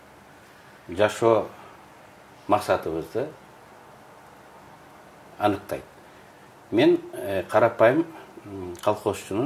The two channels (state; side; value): identical; both; correlation 1.00